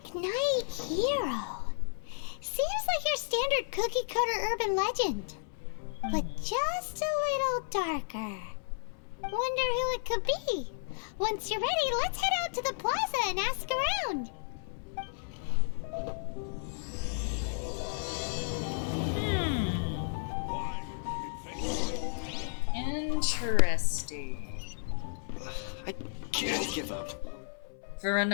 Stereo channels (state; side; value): silent; right; 56 dB below the other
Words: Knight Hero. Seems like your standard cookie cutter urban legend. But just a little darker. Wonder who it could be. Once you're ready, let's head out to the plaza and ask around. Interesting. I can't give up. For